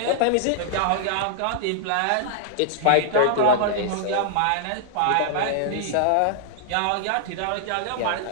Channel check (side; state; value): both; different; correlation -0.01